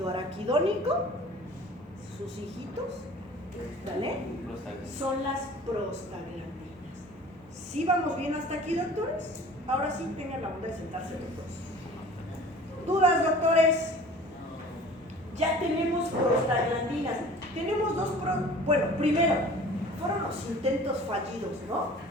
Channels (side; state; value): both; normal; correlation 0.45